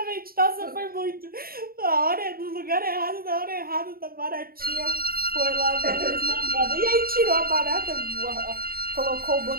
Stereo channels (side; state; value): left; late; 0.43 ms